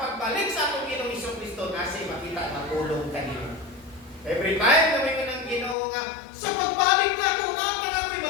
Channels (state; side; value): drops out; right; at 5.8 s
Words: sa atong Ginoong Hesukristo nasi makita nga pulong kanimo. Every time na may kanang Ginoo nga sa pagbalik na ko na para ko'y